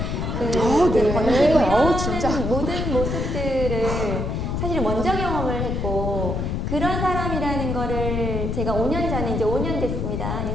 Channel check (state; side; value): noise; left; rumble, 1 dB below the sound